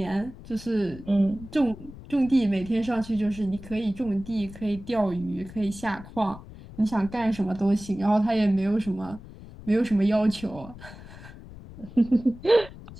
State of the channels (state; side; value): noise; left; rumble, 16 dB below the sound